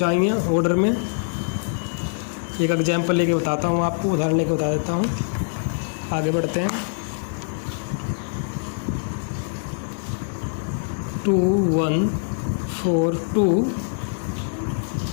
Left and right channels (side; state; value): right; silent; 62 dB below the other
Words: ऑर्डर में। एक एग्जाम्पल लेके बताता हूँ आपको, उदाहरण लेके बता देता हूँ। आगे बढ़ते हैं। 2 1 4 2